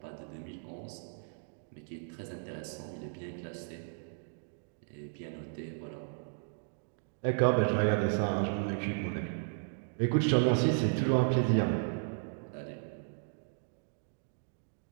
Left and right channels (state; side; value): silent; left; digital silence